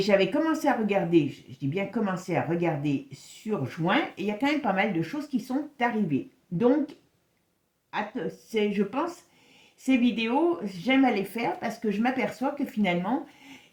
commencé à regarder, je dis bien commencé à regarder sur juin, et il y a quand même pas mal de choses qui sont arrivées. Donc, je pense, ces vidéos, j'aime à les faire parce que je m'aperçois que finalement,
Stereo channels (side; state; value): both; identical; correlation 1.00